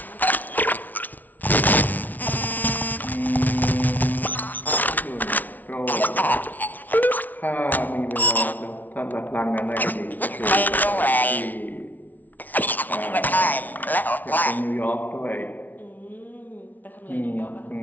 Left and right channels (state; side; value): late; right; 0.080 ms